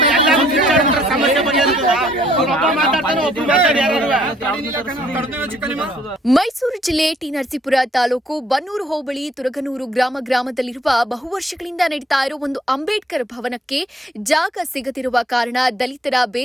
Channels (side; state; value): both; normal; correlation 0.64